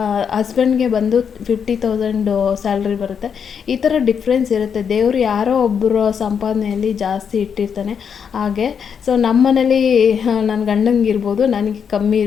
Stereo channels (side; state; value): right; quieter; 7.1 dB